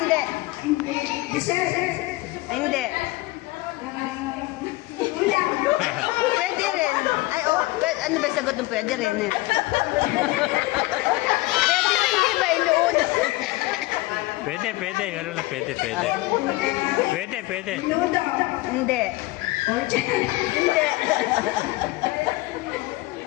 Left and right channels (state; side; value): quieter; right; 20.4 dB